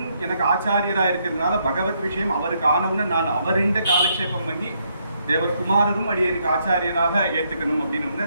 எனக்கு ஆச்சாரியராக இருக்கிறதுனால பகவத் விஷயம் அவருக்கு ஆனவுன்னு நான் அவரிண்ட காலக்ஷேபம் பண்ணி தேவர் குமாரரும் அடியனுக்கு ஆச்சாரியராக ஏற்றுக்கணும் அப்படின்னு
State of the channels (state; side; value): inverted; both; correlation -0.74